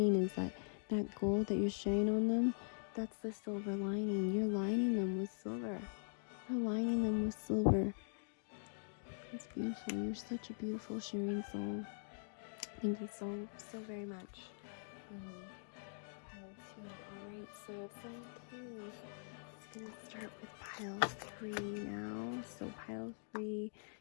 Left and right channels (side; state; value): right; silent; digital silence